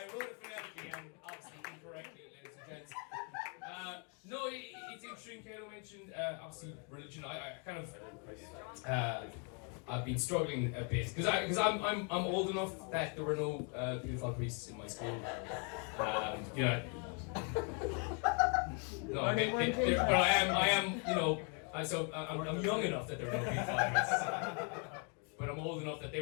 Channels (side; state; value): right; quieter; 37.8 dB